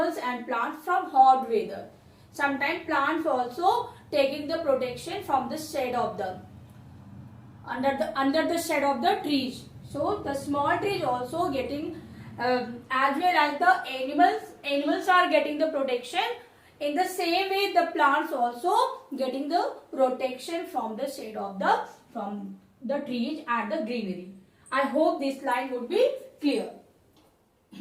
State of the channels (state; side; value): identical; both; correlation 1.00